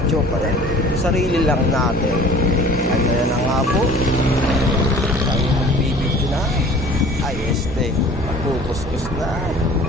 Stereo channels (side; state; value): both; normal; correlation 0.47